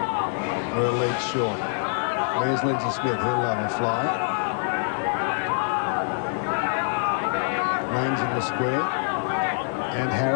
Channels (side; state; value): right; silent; digital silence